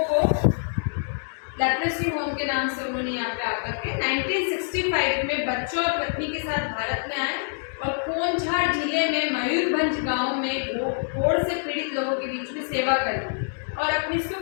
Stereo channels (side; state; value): right; silent; digital silence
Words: वो लेप्रेसी होम के नाम से उन्होंने यहाँ पे आकर के 1965 में बच्चों और पत्नी के साथ भारत में आए और कोंझार जिले में मयूरभंज गांव में कोढ़ से पीड़ित लोगों के बीच में सेवा करी और अपनी